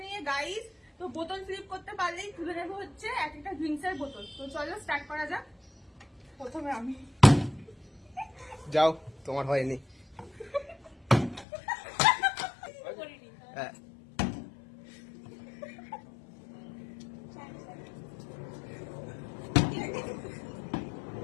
নিয়ে গাইস। তো বোতল ফ্লিপ করতে পারলেই তুলে নেবো হচ্ছে এক একটা ড্রিঙ্কসের বোতল। তো চলো স্টার্ট করা যাক। প্রথমে আমি যাও, তোমার হয়নি। হ্যাঁ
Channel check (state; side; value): drops out; right; at 11.5 s